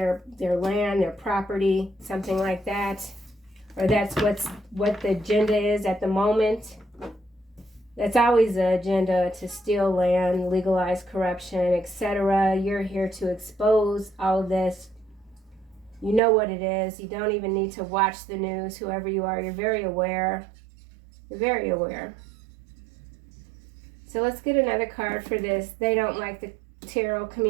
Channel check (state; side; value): drops out; left; at 16.2 s